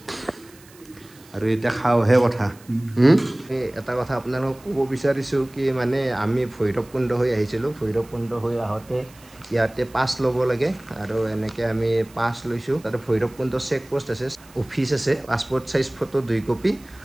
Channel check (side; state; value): right; noise; hiss, 25 dB below the sound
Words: আৰু এতিয়া খাওঁহে কথা এটা কথা আপোনালোকক ক'ব বিচাৰিছোঁ কি মানে আমি ভৈৰৱকুণ্ড হৈ আহিছিলোঁ ভৈৰৱকুণ্ড হৈ আহোঁতে ইয়াতে পাছ ল'ব লাগে আৰু এনেকৈ আমি পাছ লৈছোঁ তাতে ভৈৰৱকুণ্ড চেক পোষ্ট আছে অফিচ আছে পাছপৰ্ট চাইজ ফটো 2 কপি